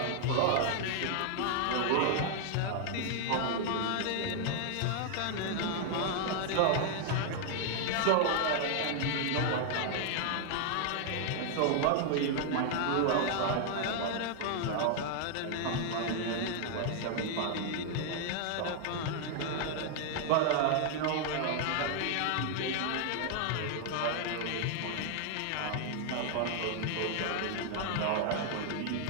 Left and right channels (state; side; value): different; both; correlation 0.00